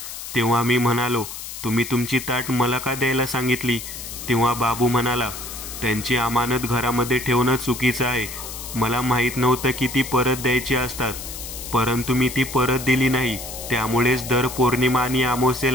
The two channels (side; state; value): left; noise; hiss, 10 dB below the sound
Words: तेव्हा मी म्हणालो, तुम्ही तुमची ताट मला का द्यायला सांगितली? तेव्हा बाबू म्हणाला, त्यांची अमानत घरामध्ये ठेवणं चुकीचं आहे. मला माहीत नव्हतं की ती परत द्यायची असतात, परंतु मी ती परत दिली नाही. त्यामुळेच दर पौर्णिमा आणि